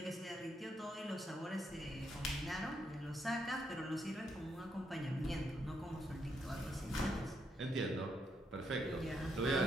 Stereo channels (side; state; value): both; normal; correlation 0.78